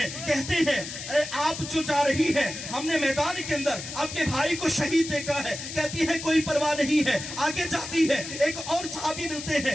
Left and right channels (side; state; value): left; noise; hiss, 9 dB below the sound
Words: کہتے ہیں اے آپ جو جا رہی ہیں، ہم نے میدان کے اندر آپ کے بھائی کو شہید دیکھا ہے، کہتی ہے کوئی پرواہ نہیں ہے، آگے جاتی ہے، ایک اور صحابی ملتے